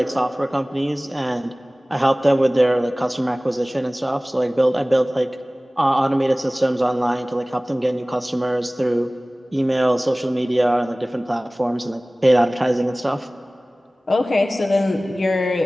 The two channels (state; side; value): normal; both; correlation 0.98